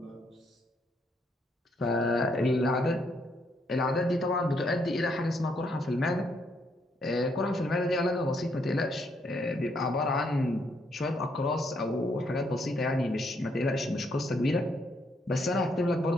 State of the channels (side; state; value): both; normal; correlation 0.73